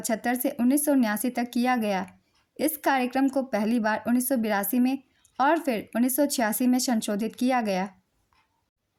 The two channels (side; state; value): both; identical; correlation 1.00